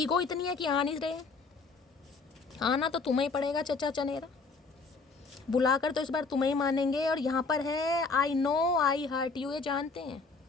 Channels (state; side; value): quieter; right; 4.3 dB